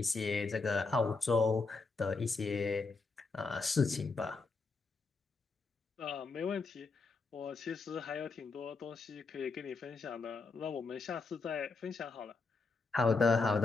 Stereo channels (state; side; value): quieter; right; 4.1 dB